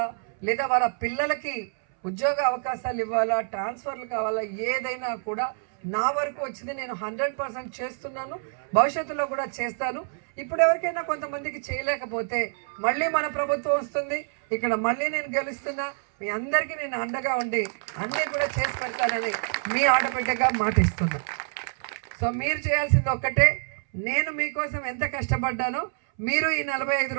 లేదా వాళ్ళ పిల్లలకి ఉద్యోగ అవకాశాలు ఇవ్వాలా, ట్రాన్స్ఫర్లు కావాలా, ఏదైనా కూడా నా వరకు వచ్చింది నేను 100% చేస్తున్నాను. భవిష్యత్తులో కూడా చేస్తాను. ఇప్పుడు ఎవరికైనా కొంతమందికి చేయలేకపోతే మళ్ళీ మన ప్రభుత్వం వస్తుంది, ఇక్కడ మళ్ళీ నేను గెలుస్తున్నా, మీ అందరికీ నేను అండగా ఉండి అన్నీ కూడా చేసి పెడతానని మీ ఆడబిడ్డగా మాటిస్తున్నా. సో మీరు చేయాల్సింది ఒక్కటే, నేను మీకోసం ఎంత కష్టపడ్డానో మీరు ఈ 45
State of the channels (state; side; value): silent; left; 60 dB below the other